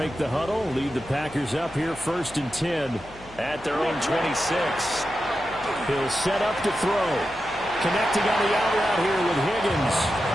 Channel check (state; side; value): noise; left; hum, 20 dB below the sound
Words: the huddle, lead the Packers up here 1st and 10 at their own 26. He'll set up to throw. Connecting on the out route here with Higgins.